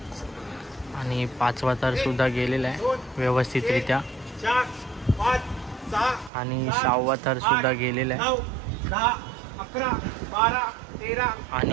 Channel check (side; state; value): left; drops out; at 6.3 s